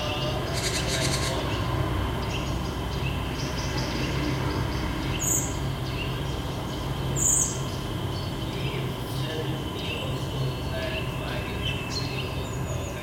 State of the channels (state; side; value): identical; both; correlation 1.00